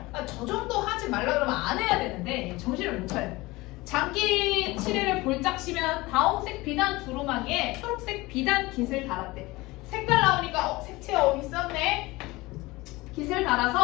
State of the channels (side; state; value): right; quieter; 21.2 dB